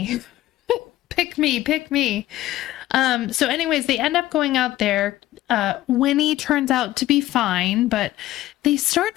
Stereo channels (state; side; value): quieter; right; 15.2 dB